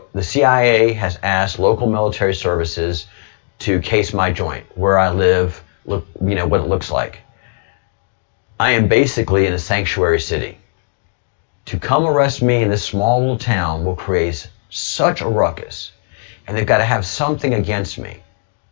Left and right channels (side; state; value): right; silent; 57 dB below the other